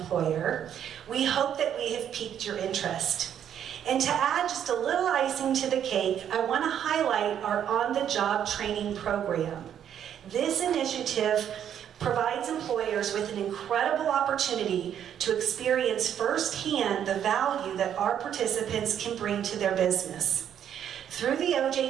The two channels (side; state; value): left; quieter; 9.5 dB